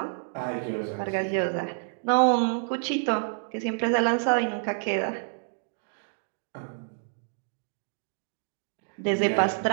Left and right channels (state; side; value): silent; left; digital silence